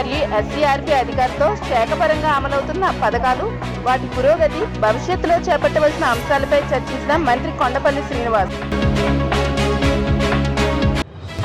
ఎస్సీఆర్పీ అధికారులతో శాఖపరంగా అమలవుతున్న పథకాలు, వాటి పురోగతి, భవిష్యత్తులో చేపట్టవలసిన అంశాలపై చర్చించిన మంత్రి Kondapalli Srinivas.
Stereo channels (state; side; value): identical; both; correlation 1.00